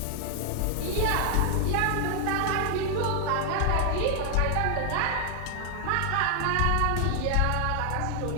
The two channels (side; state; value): both; different; correlation 0.00